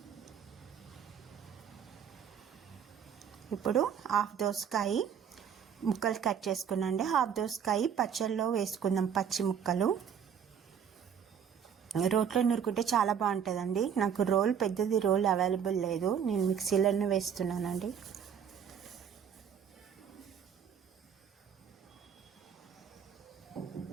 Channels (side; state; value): left; quieter; 7.9 dB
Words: ఇప్పుడు 1/2 దోసకాయ ముక్కలు కట్ చేసుకున్నాండి. 1/2 దోసకాయ పచ్చళ్ళలో వేసుకుందాం. పచ్చి ముక్కలు రోట్లో నూరుకుంటే చాలా బాగుంటుందండి. నాకు పెద్దది రోల్ అవైలబుల్ లేదు, నేను మిక్సీలోనే వేస్తున్నానండి.